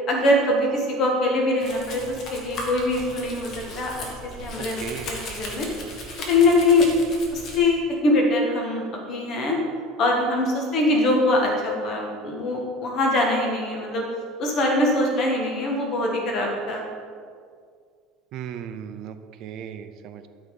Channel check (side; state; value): both; normal; correlation 0.36